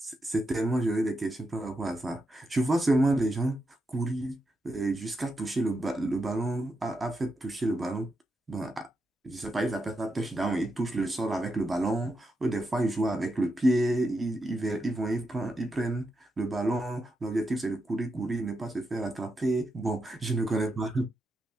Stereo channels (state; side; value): normal; both; correlation 0.85